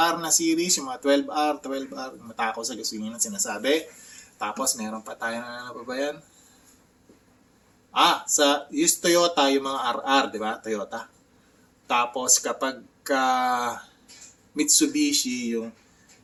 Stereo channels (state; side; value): identical; both; correlation 1.00